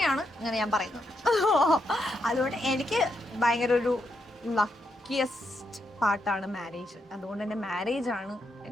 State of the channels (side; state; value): both; normal; correlation 0.81